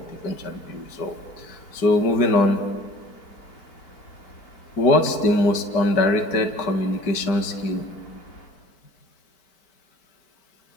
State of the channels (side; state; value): right; late; 4.6 ms